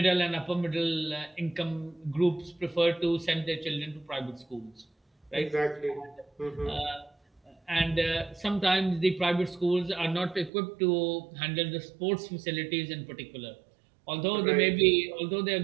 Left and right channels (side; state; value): left; drops out; at 10.5 s